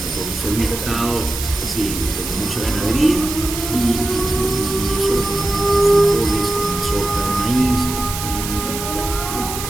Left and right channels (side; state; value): right; noise; hiss, 7 dB below the sound